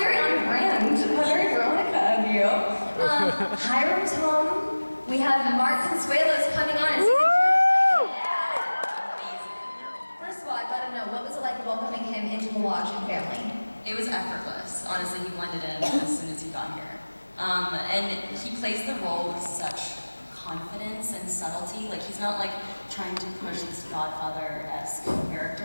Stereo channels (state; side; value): inverted; both; correlation -1.00